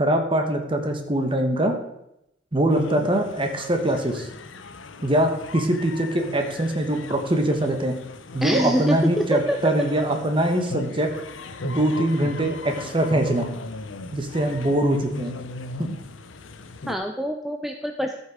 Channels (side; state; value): both; normal; correlation 0.59